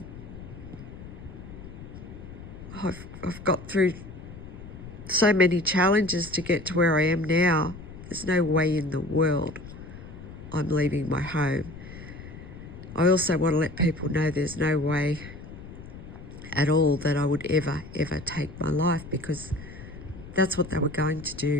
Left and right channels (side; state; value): left; noise; rumble, 14 dB below the sound